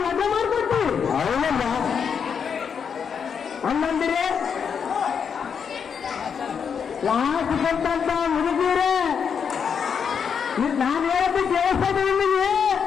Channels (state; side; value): quieter; right; 6.9 dB